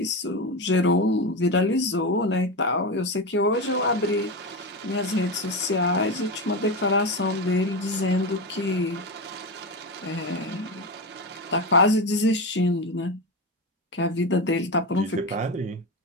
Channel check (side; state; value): both; normal; correlation 0.18